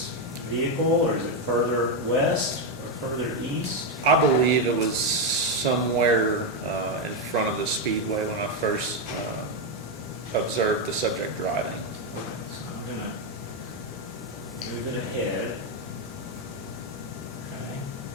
vehicle, or is it further west or further east? I believe it was somewhere in front of the Speedway when I first observed the subject driving. Okay, so I'm going to move it ahead. Okay.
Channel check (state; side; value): normal; both; correlation 0.05